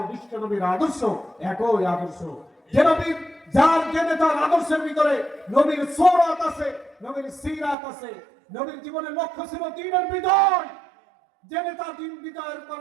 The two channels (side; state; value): left; drops out; at 7.8 s